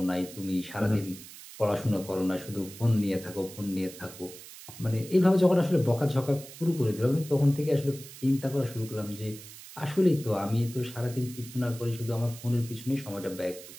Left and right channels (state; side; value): noise; right; hiss, 16 dB below the sound